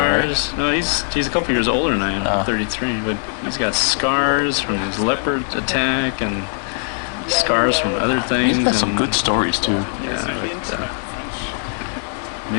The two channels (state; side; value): silent; right; digital silence